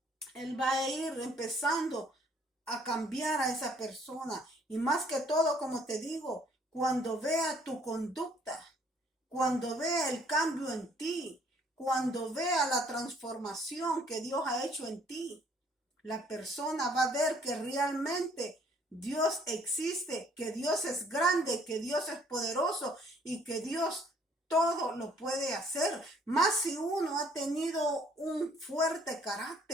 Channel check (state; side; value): normal; both; correlation 0.61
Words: Él va a ir empezando a cambiar a esa persona. Y más que todo, como te digo, cuando vea tu conducta, cuando vea el cambio en ti, cuando vea la transformación que Dios ha hecho en ti, la persona va a ver que realmente Dios existe, que Dios es grande, que Dios es poderoso y que Dios todo lo puede hacer. Más si uno ha tenido un fuerte